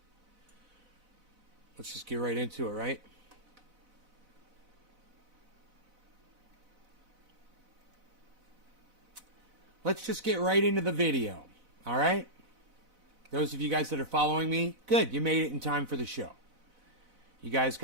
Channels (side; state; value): left; late; 4.0 ms